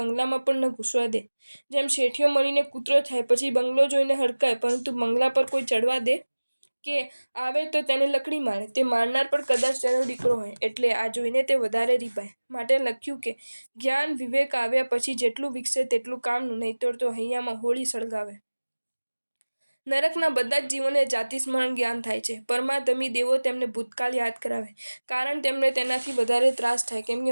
પણ ન ઘૂસવા દે. જેમ શેઠિયો મળીને કૂતરો થાય પછી બંગલો જોઈને હડકાય, પરંતુ બંગલા પર કોઈ ચડવા દે કે આવે તો તેને લકડી મારે. તે મારનાર પણ કદાચ તેનો દીકરો હોય, એટલે આ જોઈને તે વધારે રીપાય. માટે લખ્યું કે જ્ઞાન વિવેક આવ્યા પછી જેટલું વિકસે તેટલું કામનું, નહીંતર તો હૈયામાં હોળી સળગાવે. નરકના બધા જ જીવોને જાતિ સ્મરણ જ્ઞાન થાય છે. પરમાધમી દેવો તેમને ભૂતકાળ યાદ કરાવે, કારણ તેમને તેનાથી વધારે ત્રાસ થાય. કેમ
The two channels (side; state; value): both; inverted; correlation -1.00